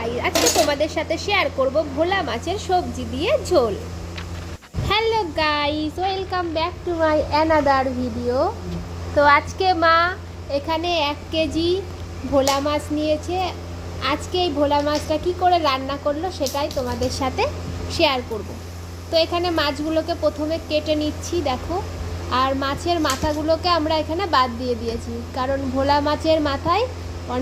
আজকে তোমাদের সাথে শেয়ার করব ভোলা মাছের সবজি দিয়ে ঝোল। Hello guys, welcome back to my another video. তো আজকে মা এখানে 1 কেজি ভোলা মাছ নিয়েছে। আজকে এই ভোলা মাছটা কি করে রান্না করলো সেটাই তোমাদের সাথে শেয়ার করব। তো এখানে মাছগুলোকে প্রথমে কেটে নিচ্ছি, দেখো। আর মাছের মাথাগুলোকে আমরা এখানে বাদ দিয়ে দিয়েছি, কারণ ভোলা মাছের মাথায়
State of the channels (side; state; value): both; identical; correlation 1.00